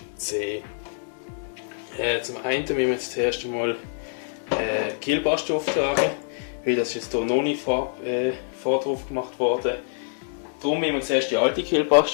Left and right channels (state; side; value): silent; right; digital silence